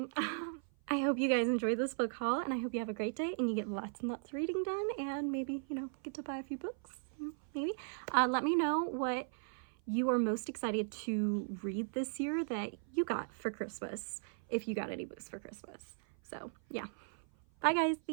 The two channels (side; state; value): left; silent; 53 dB below the other